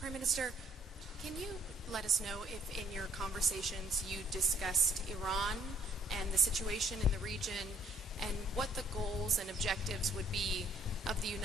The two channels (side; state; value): both; normal; correlation 0.63